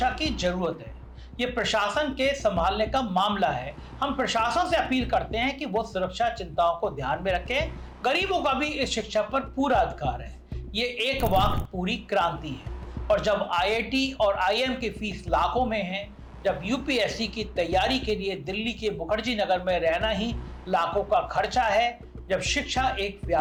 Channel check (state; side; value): identical; both; correlation 1.00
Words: की जरूरत है, ये प्रशासन के संभालने का मामला है। हम प्रशासन से अपील करते हैं कि वो सुरक्षा चिंताओं को ध्यान में रखें। गरीबों का भी इस शिक्षा पर पूरा अधिकार है। ये एक वाक़ पूरी क्रांति है। और जब आईआईटी और आईएम की फीस लाखों में है, जब यूपीएससी की तैयारी के लिए दिल्ली के मुखर्जी नगर में रहना ही लाखों का खर्चा है, जब शिक्षा एक